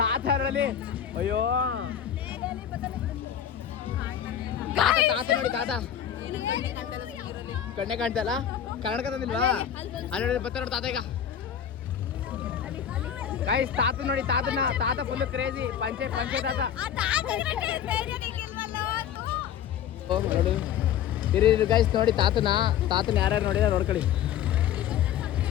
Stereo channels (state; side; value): quieter; right; 9.3 dB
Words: ಅಯ್ಯೋ ತಾತ ನೋಡಿ ತಾತ ಕಣ್ಣೆ ಕಾಣ್ತಲ್ಲ. ಕನ್ನಡಕ ತಂದಿಲ್ವಾ? ಅಲ್ಲಿ ಬರ್ತಾರೆ ನೋಡಿ ತಾತ. ಈಗ ಗೈಸ್ ತಾತ ನೋಡಿ ತಾತ ಫುಲ್ ಕ್ರೇಜಿ ಪಂಚೆ ತಾತ. ಓ ನೋಡು ಇರಿ ಗೈಸ್ ನೋಡಿ ತಾತನ ಯಾರ್ಯಾರು ನೋಡಿದ್ರೆ ನೋಡ್ಕೊಳ್ಳಿ.